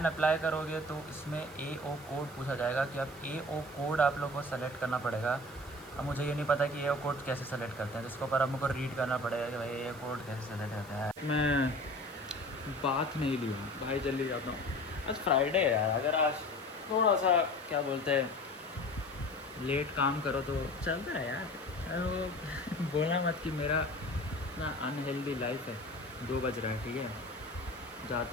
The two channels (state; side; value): noise; right; hiss, 21 dB below the sound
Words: अप्लाई करोगे तो इसमें AO कोड पूछा जाएगा कि आप AO कोड आप लोग को सेलेक्ट करना पड़ेगा। अब मुझे ये नहीं पता कि AO कोड कैसे सेलेक्ट करते हैं, जिसके ऊपर अब मुझको रीड करना पड़ेगा कि भाई AO कोड कैसे सेलेक्ट करता है। मैं बात नहीं ली हूँ भाई, जल्दी जाता हूँ। आज फ्राइडे है यार, अगर आज थोड़ा सा क्या बोलते हैं लेट काम करो तो चलता है यार। बोलना मत कि मेरा इतना अनहेल्दी लाइफ है। 2 बज रहा है, ठीक है।